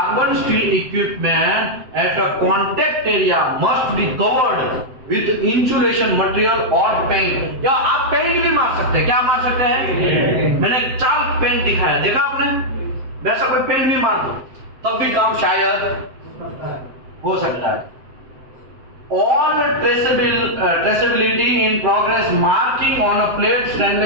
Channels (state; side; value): late; left; 7.8 ms